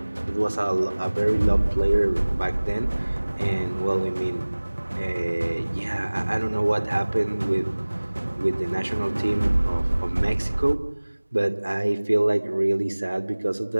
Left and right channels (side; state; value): both; inverted; correlation -1.00